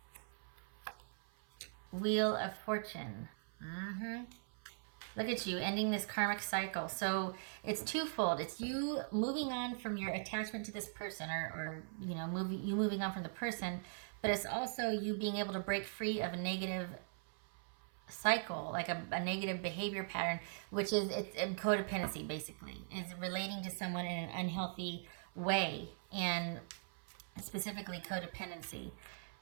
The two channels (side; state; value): left; silent; 50 dB below the other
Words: Wheel of Fortune. Look at you ending this karmic cycle. So it's twofold. It's you moving on from your attachment to this person or you know, moving on from the person, but it's also you being able to break free of a negative cycle, like a negative behavior pattern, which is it's codependency basically. Is relating to someone in an unhealthy way and specifically codependency.